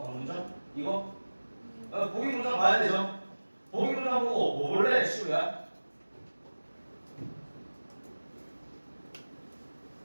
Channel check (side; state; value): both; inverted; correlation -1.00